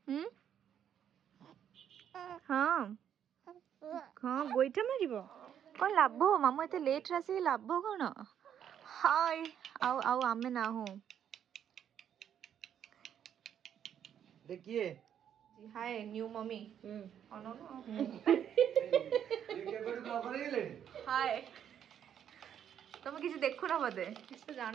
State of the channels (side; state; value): left; quieter; 9.3 dB